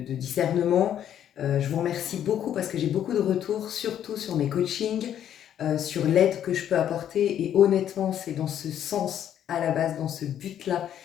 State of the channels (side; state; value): right; quieter; 10.2 dB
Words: discernement. Je vous remercie beaucoup parce que j'ai beaucoup de retours, surtout sur mes coachings, sur l'aide que je peux apporter. Et honnêtement, c'est dans ce sens, à la base, dans ce but-là,